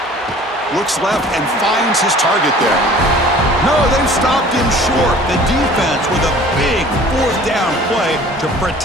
Looks left and finds his target there. No, they've stopped him short. The defense with a big fourth down play to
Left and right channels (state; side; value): normal; both; correlation 0.48